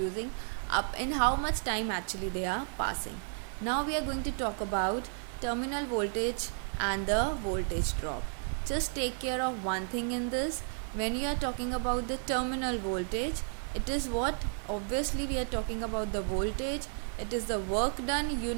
up in how much time actually they are passing. Now we are going to talk about terminal voltage and the voltage drop. Just take care of one thing in this. When you are talking about the terminal voltage, it is what? Obviously we are talking about the voltage. It is the work done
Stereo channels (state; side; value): silent; left; 56 dB below the other